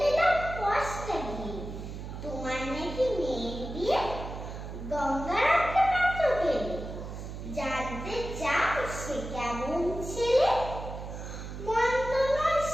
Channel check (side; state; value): right; noise; hum, 9 dB below the sound